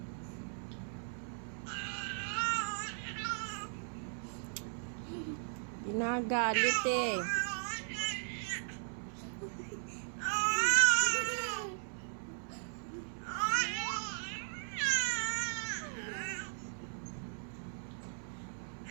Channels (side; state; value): left; silent; digital silence